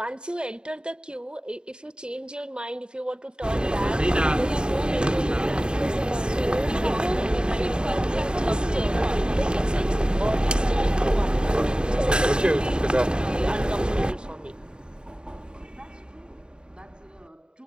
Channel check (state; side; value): late; left; 0.049 ms